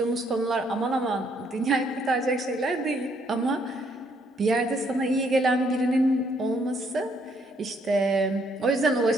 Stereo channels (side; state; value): both; normal; correlation 0.69